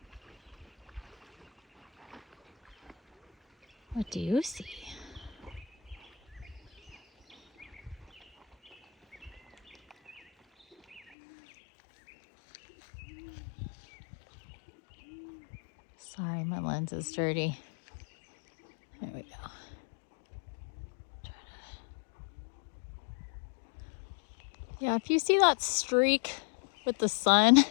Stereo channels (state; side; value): drops out; right; at 11.0 s